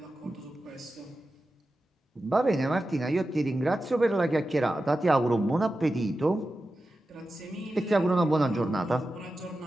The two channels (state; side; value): normal; both; correlation 0.92